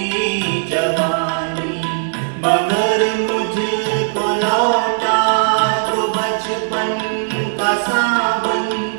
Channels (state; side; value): silent; left; digital silence